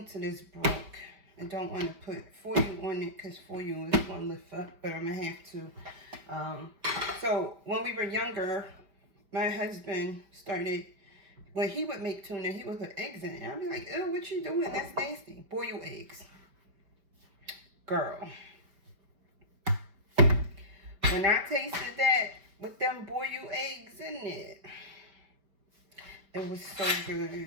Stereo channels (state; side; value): late; left; 5.2 ms